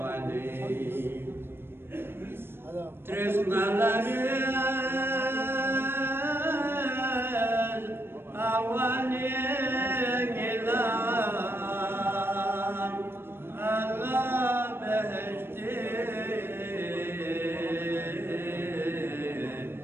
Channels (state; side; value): late; left; 0.11 ms